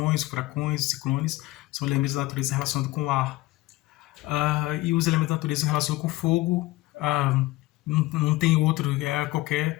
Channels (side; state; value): right; quieter; 19.1 dB